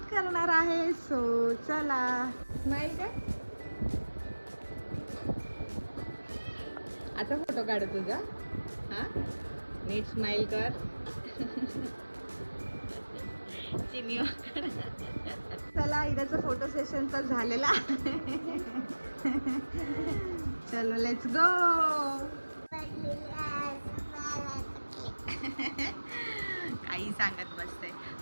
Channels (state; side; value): inverted; both; correlation -1.00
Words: करणार आहे. सो चला. स्माईल का आता फोटो काढू तुझा. हां नीट स्माइल कर. चला इराचा फोटो सेशन तर झालेला आहे. चलो लेट्स गो. काही सांगत बसते.